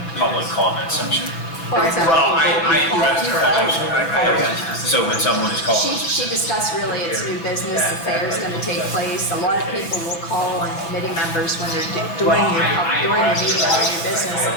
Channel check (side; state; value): right; late; 6.1 ms